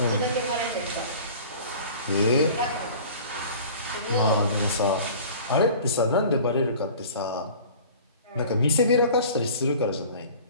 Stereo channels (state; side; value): inverted; both; correlation -0.43